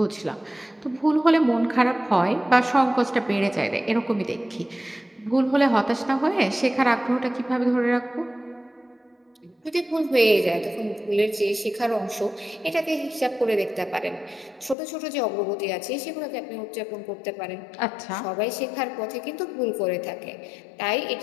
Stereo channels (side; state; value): right; drops out; at 14.8 s